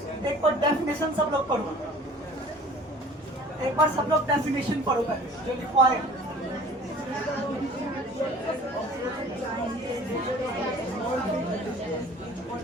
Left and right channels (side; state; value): both; normal; correlation 0.48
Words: एक बार डेफिनेशन सब लोग पढ़ो, एक बार सब लोग डेफिनेशन पढ़ो पहले जो लिखवा है।